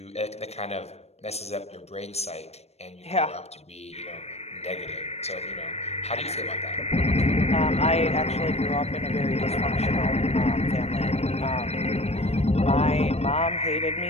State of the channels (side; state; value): right; late; 0.31 ms